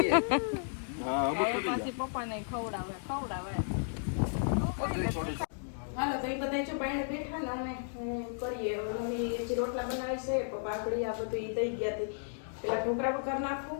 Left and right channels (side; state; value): right; silent; digital silence